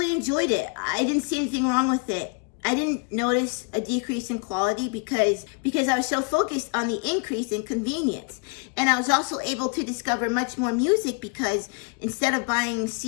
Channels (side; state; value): right; quieter; 36.3 dB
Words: enjoyed it. I didn't see anything wrong with it. I didn't notice a decrease in quality because I was so focused on the increase in convenience. And I was also able to discover much more music because instead of buying